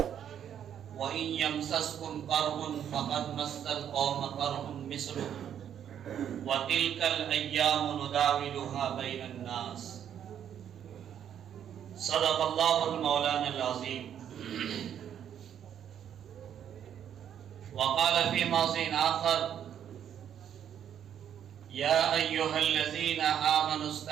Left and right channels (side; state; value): left; quieter; 9.4 dB